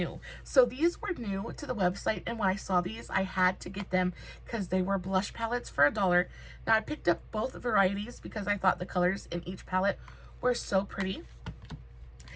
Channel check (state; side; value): identical; both; correlation 1.00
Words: So these were new to the website, and when I saw these, I had to get them because they were blush palettes for $1. Now I picked up both varieties because I thought the colors in each palette were so pretty.